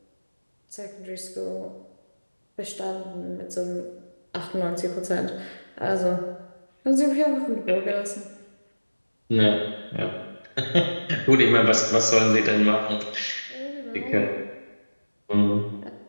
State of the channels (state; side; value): inverted; both; correlation -1.00